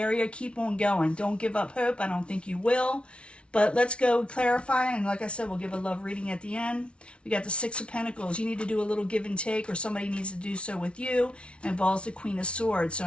keep on going. Don't give up hope. I don't think you will. But let's go clarify, and like I said, we'll give a love reading at the end. We got the Six of Pentacles. You need to do a little give and take, or somebody needs to do so with you. It involves the Queen of Swords. So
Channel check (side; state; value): right; late; 0.059 ms